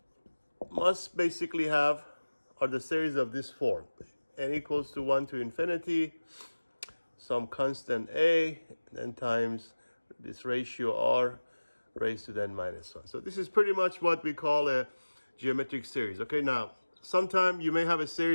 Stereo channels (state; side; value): inverted; both; correlation -1.00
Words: must basically have are the series of this form: n equals to 1 to infinity, some constant a, then times this ratio r raised to the n minus 1. So this is pretty much what we call a geometric series. Okay, now sometime you may have a